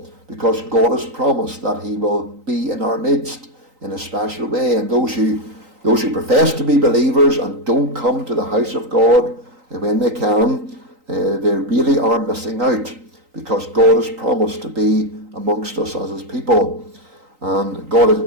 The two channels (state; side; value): late; left; 3.9 ms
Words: because God has promised that he will be in our midst in a special way. And those who profess to be believers and don't come to the house of God when they can, they really are missing out, because God has promised to be amongst us as his people. And God